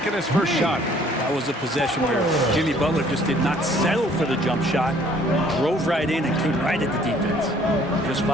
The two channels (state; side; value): normal; both; correlation 0.58